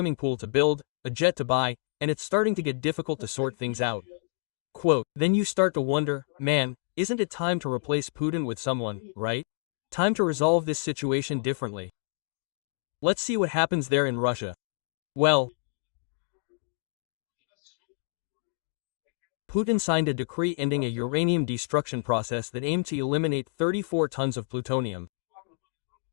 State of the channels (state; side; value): silent; right; digital silence